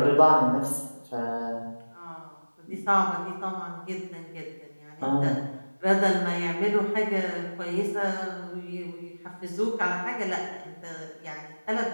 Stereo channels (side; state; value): both; inverted; correlation -1.00